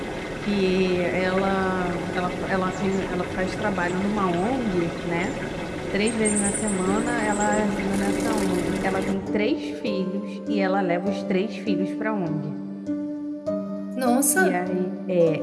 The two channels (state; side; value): identical; both; correlation 1.00